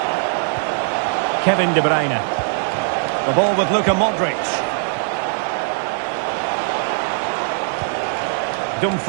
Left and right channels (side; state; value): left; silent; digital silence